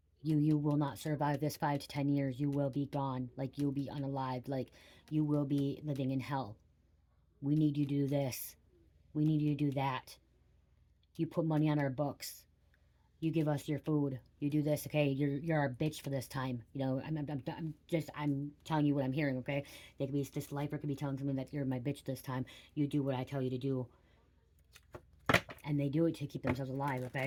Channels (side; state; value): both; identical; correlation 1.00